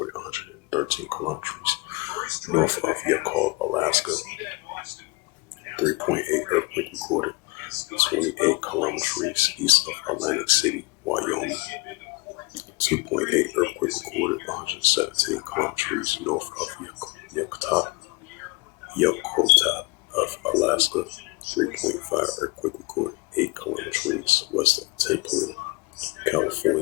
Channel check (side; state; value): right; quieter; 24.0 dB